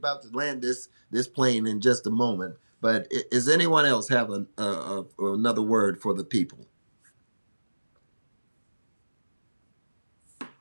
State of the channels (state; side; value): inverted; both; correlation -1.00